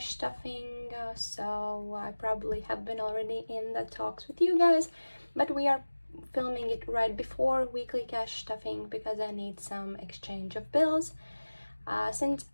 stuffing, so I probably have been already in the talks with you guys, but we are filming it right before weekly cash stuffing because I need some exchange of bills. Since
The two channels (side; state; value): both; inverted; correlation -1.00